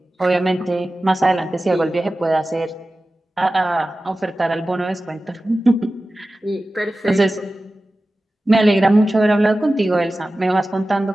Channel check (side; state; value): both; normal; correlation 0.95